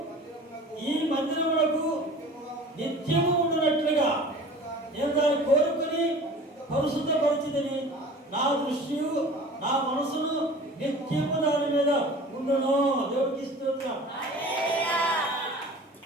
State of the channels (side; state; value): both; normal; correlation 0.41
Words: ఈ మందిరములకు నిత్యము ఉండునట్లుగా నేను దాన్ని కోరుకుని పరిశుద్ధపరిచిదని నా దృష్టియు నా మనసును నిత్యము దాని మీద ఉండును. దేవుడికి స్తోత్రం.